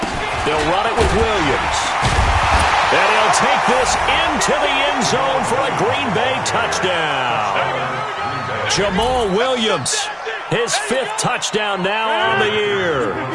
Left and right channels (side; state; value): both; identical; correlation 1.00